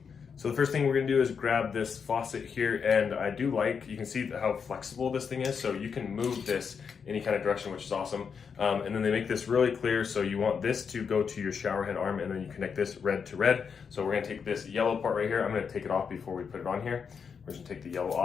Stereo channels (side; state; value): right; quieter; 6.3 dB